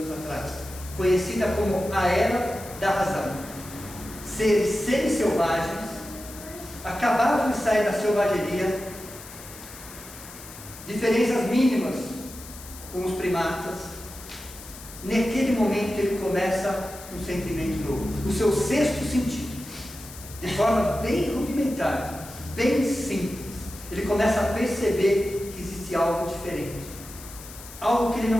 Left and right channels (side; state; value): left; noise; hiss, 15 dB below the sound